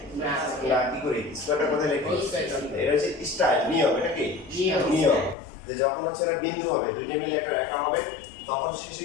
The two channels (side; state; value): right; drops out; at 5.4 s